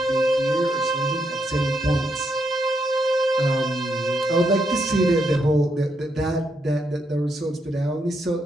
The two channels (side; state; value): both; normal; correlation 0.79